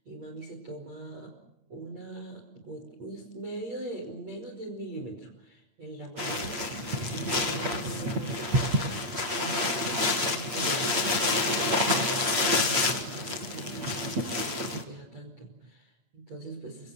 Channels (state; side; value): late; left; 8.5 ms